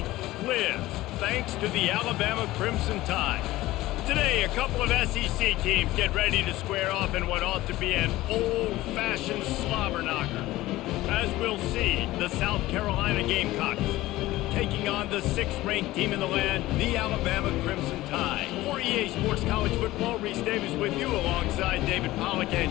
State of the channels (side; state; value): right; quieter; 17.2 dB